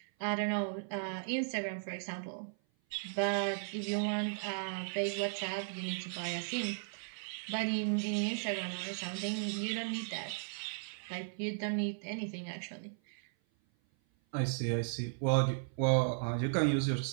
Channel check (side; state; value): left; silent; 54 dB below the other